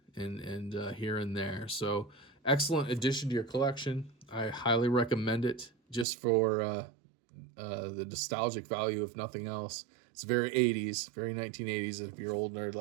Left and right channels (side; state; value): left; drops out; at 6.1 s